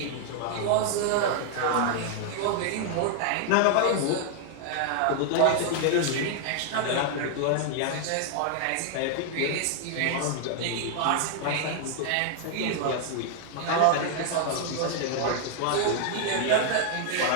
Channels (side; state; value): both; different; correlation 0.00